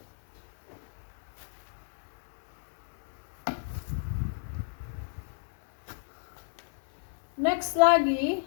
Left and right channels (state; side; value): silent; right; digital silence